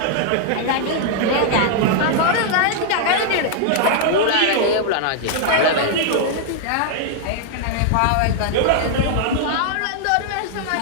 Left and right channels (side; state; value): both; different; correlation 0.00